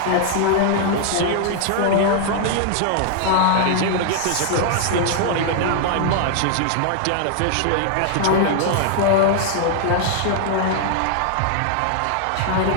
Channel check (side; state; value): both; different; correlation 0.00